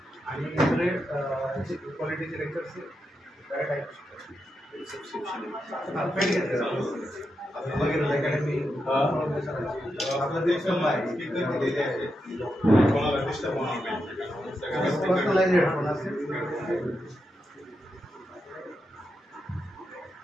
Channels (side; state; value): both; normal; correlation 0.86